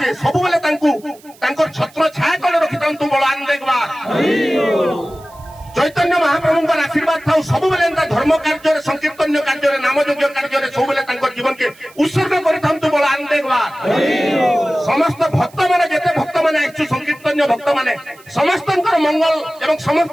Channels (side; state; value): right; noise; hiss, 26 dB below the sound